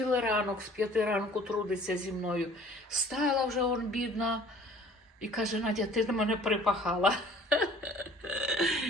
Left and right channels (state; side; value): normal; both; correlation 0.51